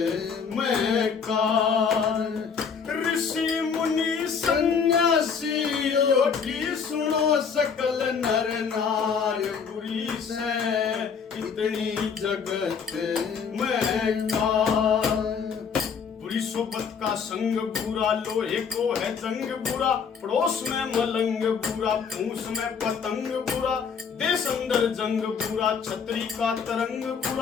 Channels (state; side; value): quieter; right; 6.3 dB